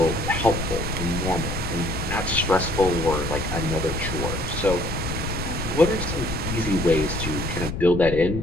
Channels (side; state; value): left; noise; rumble, 5 dB below the sound